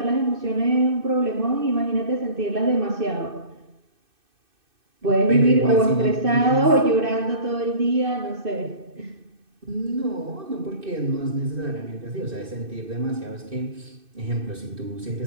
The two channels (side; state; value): left; late; 2.6 ms